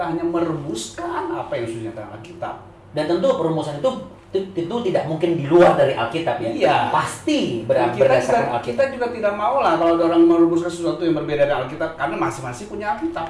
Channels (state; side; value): identical; both; correlation 1.00